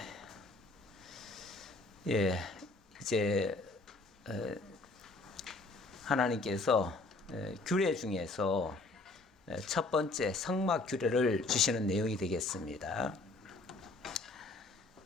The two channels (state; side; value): quieter; right; 3.3 dB